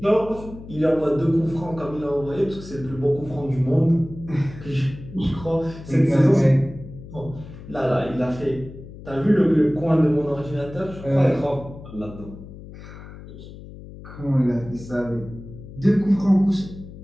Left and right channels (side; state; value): left; noise; hum, 15 dB below the sound